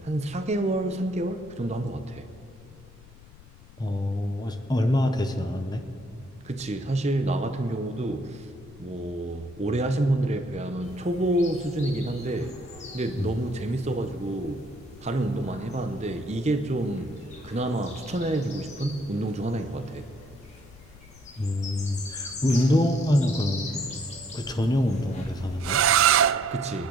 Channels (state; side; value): noise; left; rumble, 21 dB below the sound